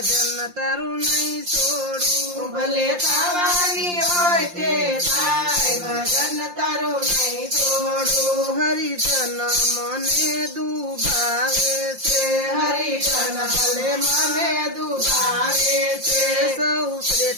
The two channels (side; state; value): left; late; 5.7 ms